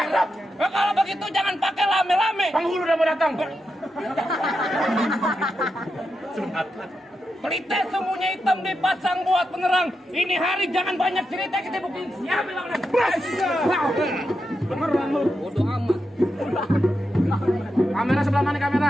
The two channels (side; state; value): both; normal; correlation 0.86